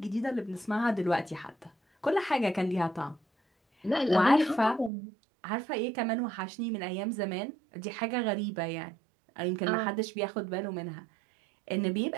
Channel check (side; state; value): left; drops out; at 4.9 s